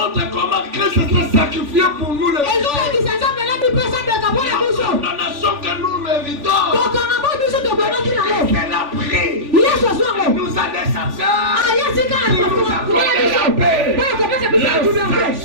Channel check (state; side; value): late; left; 3.5 ms